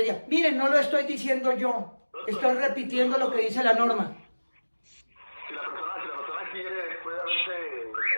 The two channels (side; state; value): both; inverted; correlation -1.00